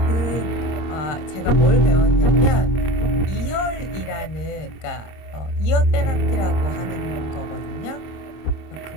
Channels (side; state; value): right; late; 26 ms